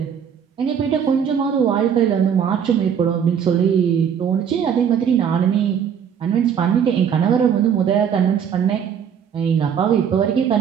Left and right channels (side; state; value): left; quieter; 8.0 dB